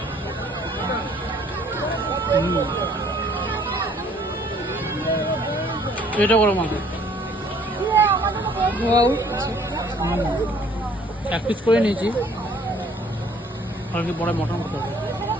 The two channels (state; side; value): normal; both; correlation 0.59